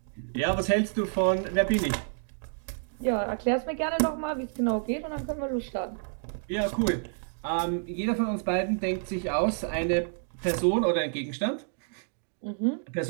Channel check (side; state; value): left; silent; digital silence